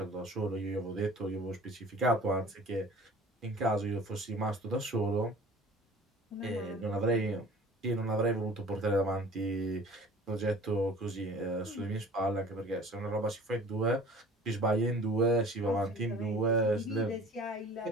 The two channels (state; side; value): normal; both; correlation 0.46